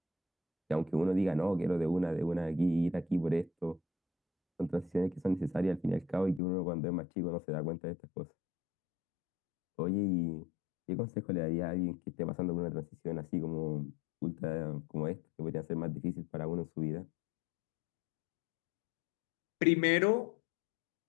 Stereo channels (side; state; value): right; drops out; at 6.4 s